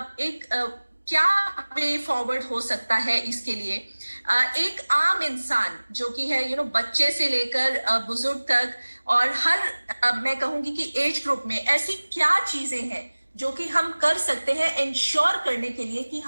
एक क्या वे फॉरवर्ड हो सकता है इसके लिए? एक आम इंसान जो कि है बच्चे से लेकर बुजुर्ग तक, और हर मैं कहूंगी कि एज ग्रुप में ऐसी क्या चीजें हैं जो कि हम कर सकते हैं इंश्योर करने के लिए कि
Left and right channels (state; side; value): inverted; both; correlation -1.00